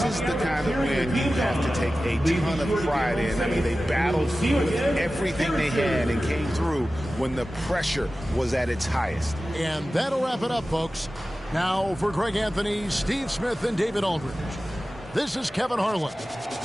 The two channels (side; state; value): both; normal; correlation 0.95